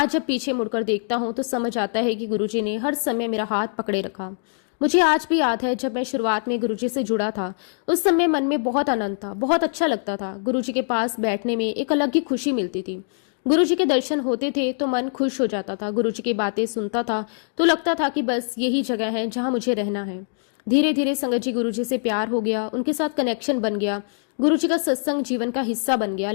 जब पीछे मुड़कर देखता हूं तो समझ आता है कि गुरुजी ने हर समय मेरा हाथ पकड़े रखा। मुझे आज भी याद है जब मैं शुरुआत में गुरुजी से जुड़ा था, उस समय मन में बहुत आनंद था, बहुत अच्छा लगता था। गुरुजी के पास बैठने में एक अलग ही खुशी मिलती थी। गुरुजी के दर्शन होते थे तो मन खुश हो जाता था। गुरुजी की बातें सुनता था तो लगता था कि बस यही जगह है जहां मुझे रहना है। धीरे धीरे संगत जी गुरुजी से प्यार हो गया, उनके साथ कनेक्शन बन गया, गुरुजी का सत्संग जीवन का हिस्सा बन गया।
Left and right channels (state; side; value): silent; right; digital silence